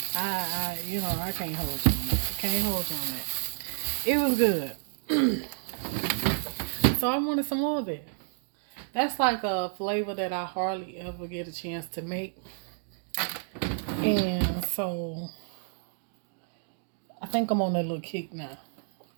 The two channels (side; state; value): left; silent; digital silence